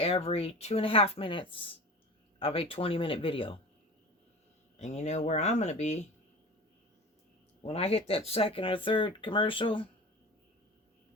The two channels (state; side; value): normal; both; correlation 0.35